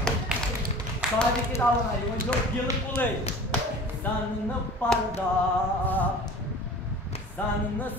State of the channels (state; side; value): normal; both; correlation 0.42